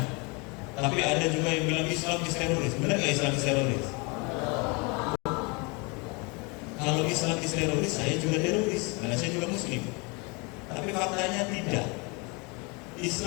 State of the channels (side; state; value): right; quieter; 29.8 dB